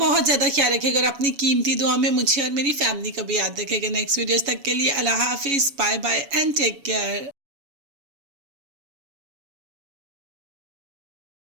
ज़्यादा ख्याल रखिएगा और अपनी कीमती दुआ में मुझे और मेरी फैमिली को भी याद रखिएगा। नेक्स्ट वीडियोस तक के लिए अल्लाह हाफिज़, bye bye and take care.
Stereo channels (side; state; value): left; late; 7.1 ms